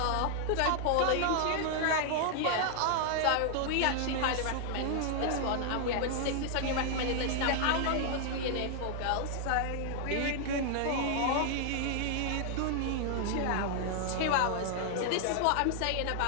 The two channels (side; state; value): both; different; correlation 0.00